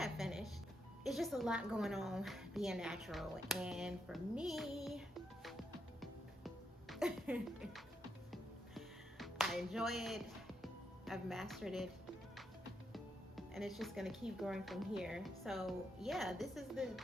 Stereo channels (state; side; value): normal; both; correlation 0.81